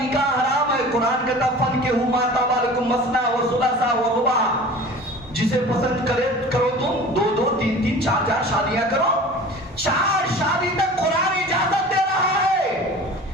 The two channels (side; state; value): both; normal; correlation 0.40